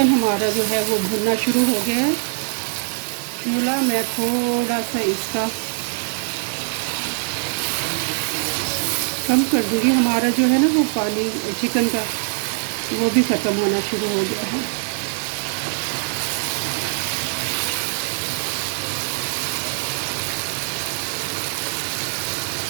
हमारा जो है वो भुनना शुरू हो गया है। चूल्हा मैं थोड़ा सा इसका कम कर दूँगी। हमारा जो है ना वो पानी चिकन का वो भी ख़त्म होना शुरू हो गया है।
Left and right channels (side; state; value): left; silent; digital silence